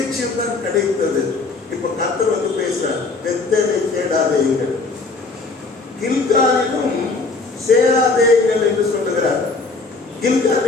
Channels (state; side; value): quieter; right; 3.9 dB